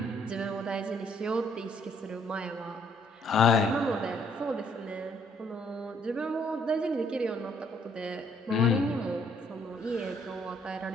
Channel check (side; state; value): both; normal; correlation 0.66